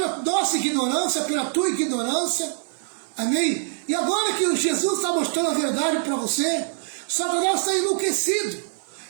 nossa ignorância, pela tua ignorância, amém? E agora que Jesus está mostrando a verdade para você, Satanás está enlouquecido.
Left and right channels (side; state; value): left; silent; 63 dB below the other